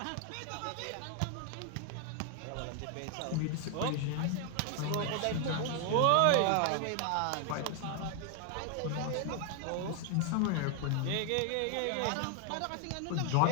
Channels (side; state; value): both; different; correlation 0.00